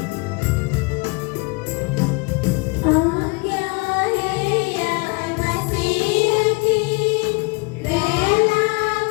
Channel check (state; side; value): quieter; right; 28.3 dB